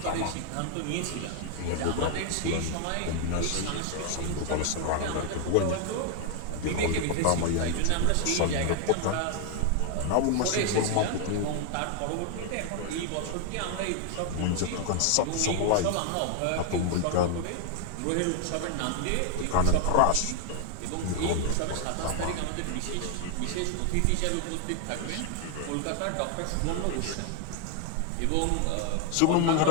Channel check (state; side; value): different; both; correlation 0.00